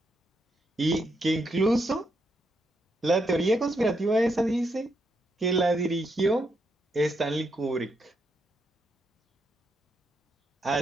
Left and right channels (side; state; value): both; normal; correlation 0.80